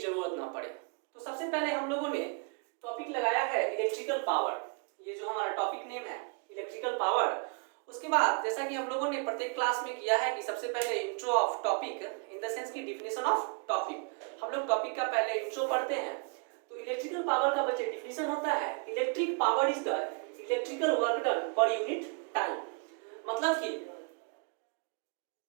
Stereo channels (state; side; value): quieter; left; 35.8 dB